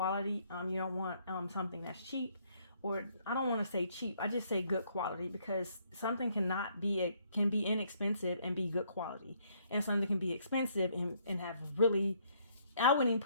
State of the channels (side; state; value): both; inverted; correlation -0.68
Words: You don't want something that's cheap, or I don't want to say cheap, I just say good quality, because something can be inexpensive and be good quality, and something can be expensive and have really, I wouldn't even